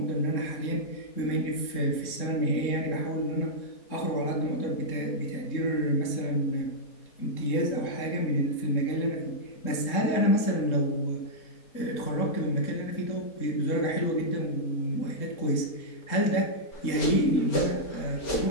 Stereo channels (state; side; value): late; right; 3.8 ms